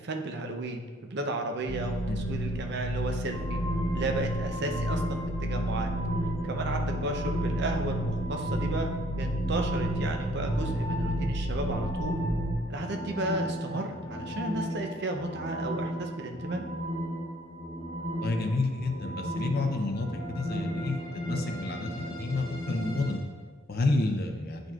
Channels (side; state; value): both; normal; correlation 0.64